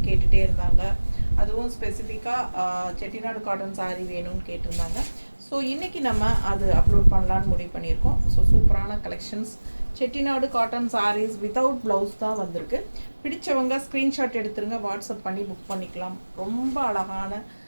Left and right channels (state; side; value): inverted; both; correlation -1.00